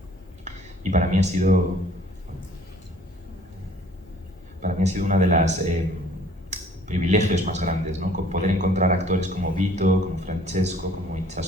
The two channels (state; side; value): normal; both; correlation 0.55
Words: y para mí ha sido una de las privilegios más grandes, ¿no? Poder encontrar actores como Vito, como Francesco, como